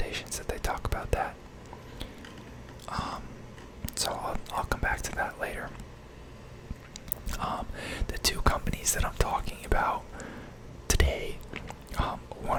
that they talk about that. So I'll come back to that later. The two companies that I'm talking about today,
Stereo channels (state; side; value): identical; both; correlation 1.00